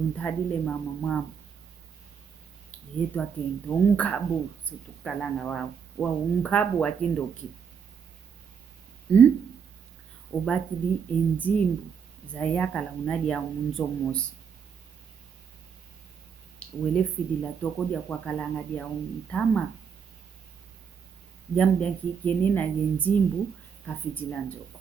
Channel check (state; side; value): quieter; left; 6.8 dB